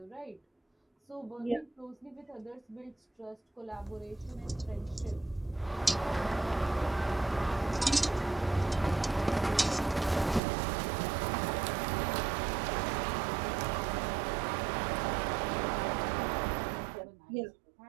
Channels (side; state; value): left; drops out; at 10.4 s